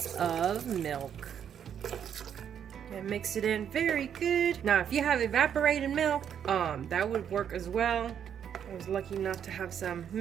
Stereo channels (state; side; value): quieter; left; 8.7 dB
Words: of milk. And mix it in very good. Now, if you have evaporated milk, that would work as well. I was lucky enough to have some